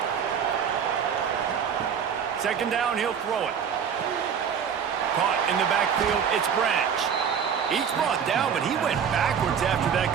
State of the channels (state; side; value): quieter; left; 7.5 dB